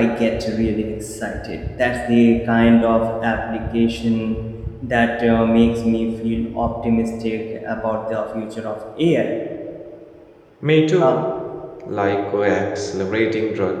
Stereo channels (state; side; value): identical; both; correlation 1.00